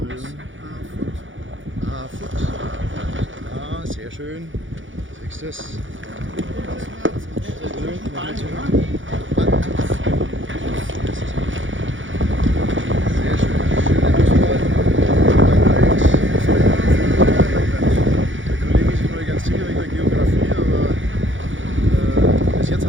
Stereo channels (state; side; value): late; left; 0.56 ms